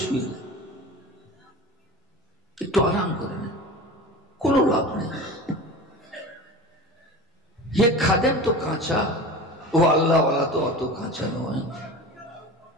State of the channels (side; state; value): both; normal; correlation 0.33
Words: শুয়ে একটু আরাম করে নেন, কোনো লাভ নেই। ये খাদেম তো কাঁচা, ও আল্লাহওয়ালা তো অত কাঁচা নয়।